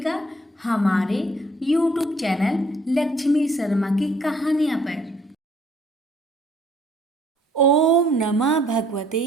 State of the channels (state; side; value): normal; both; correlation 0.62